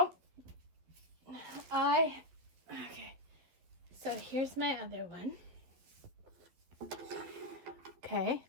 okay, so here's my other one. Okay,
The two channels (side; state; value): left; late; 12 ms